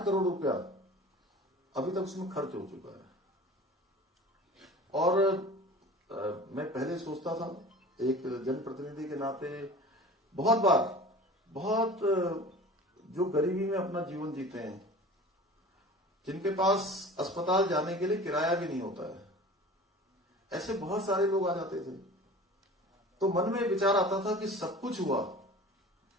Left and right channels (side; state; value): both; normal; correlation 0.40